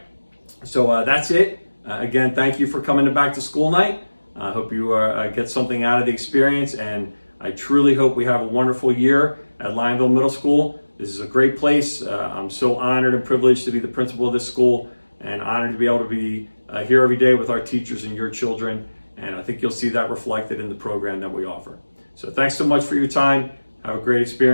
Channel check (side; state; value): both; inverted; correlation -1.00